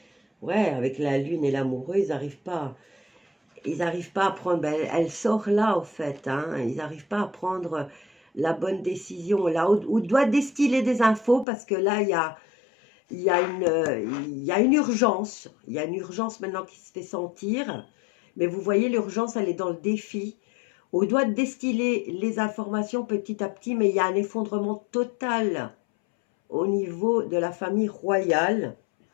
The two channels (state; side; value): drops out; right; at 11.5 s